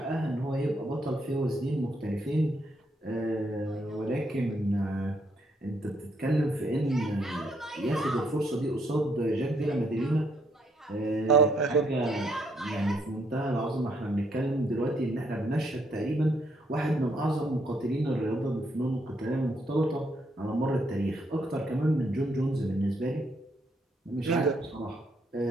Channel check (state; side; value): normal; both; correlation 0.73